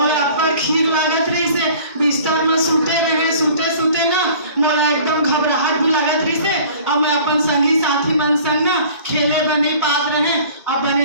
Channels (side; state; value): both; inverted; correlation -0.48